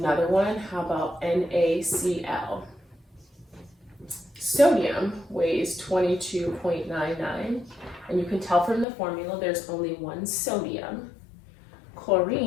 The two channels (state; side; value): drops out; right; at 8.8 s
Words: one. How about NaCl? Sodium weighs 22.99, and you can tell from the formula there's only 1 sodium.